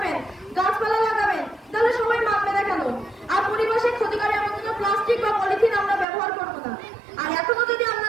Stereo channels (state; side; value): drops out; left; at 6.1 s